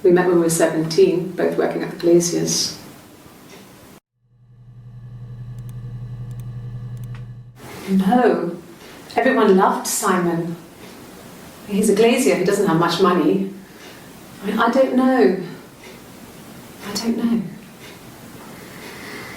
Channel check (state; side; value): identical; both; correlation 1.00